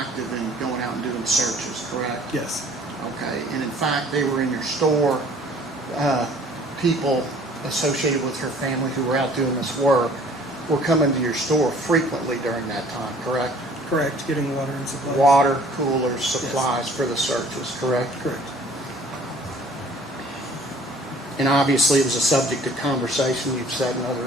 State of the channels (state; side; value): normal; both; correlation 0.54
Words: in going out and doing searches, correct? Yes. Okay. And in fact, they were in your store. People associated with her family who were out doing this work were coming to your store frequently during that time, correct? Correct, getting water and supplies. Water, coolers, supplies for the searches, correct? Correct. And obviously, it was a subject of conversation, you've said in